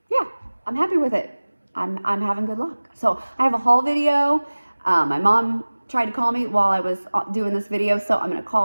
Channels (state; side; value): inverted; both; correlation -1.00